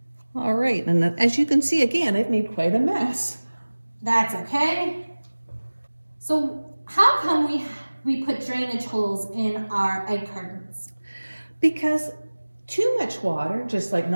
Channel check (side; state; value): both; inverted; correlation -1.00